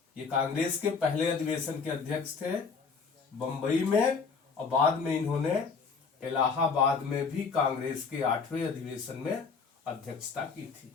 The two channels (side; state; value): right; quieter; 5.2 dB